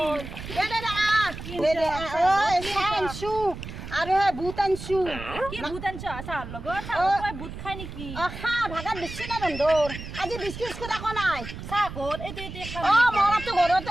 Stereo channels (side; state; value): right; noise; rumble, 10 dB below the sound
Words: দে চানছু আৰু হে বুট আনছু কি বুট আনছ চাৰ লগত চাৰ বুট খাই নেকি খা ভাগাত বেছি না বন্ধৰ আজি বিস্কুট আকৌ নাই চাহ ক'ত এইটো খাম মৰাটো